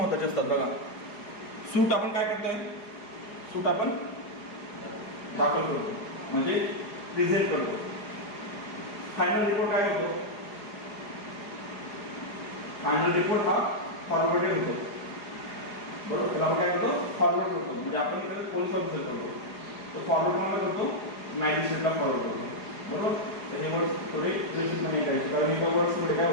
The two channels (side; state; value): right; late; 4.8 ms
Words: असतात बघा. सूट आपण काय करतोय, सूट आपण दाखल करतो म्हणजे प्रेझेंट करतो. फायनल रिपोर्ट काय होतो, फायनल रिपोर्ट हा फॉरवर्डेड होतो, बरोबर. त्याला आपण काय करतो, फॉरवर्ड करतो, म्हणजे आपण इकडे पोलीस ऑफिसर करतो, तो फॉरवर्ड कोणाला करतो, मॅजिस्ट्रेटला फॉरवर्ड करतो, बरोबर. त्याचे वर्ड्स थोडे व्यवस्थितपणे करायचे, कारण एका वर्ड्समध्ये